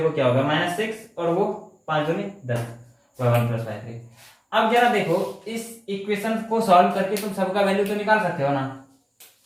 क्या होगा? -6, और वो 5 दूनी 10, y1 + y3। अब जरा देखो, इस इक्वेशन को सॉल्व करके तुम सबका वैल्यू तो निकाल सकते हो ना।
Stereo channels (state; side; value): identical; both; correlation 1.00